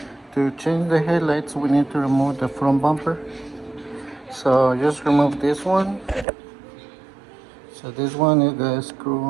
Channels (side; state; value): left; drops out; at 6.2 s